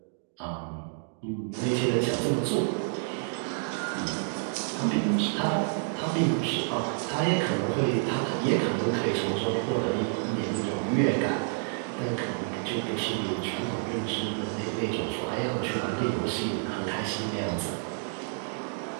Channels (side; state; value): left; silent; 57 dB below the other